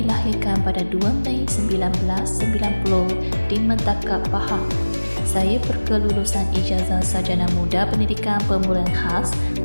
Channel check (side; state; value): both; inverted; correlation -1.00